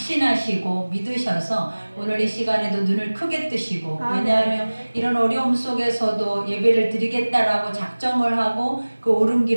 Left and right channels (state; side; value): inverted; both; correlation -1.00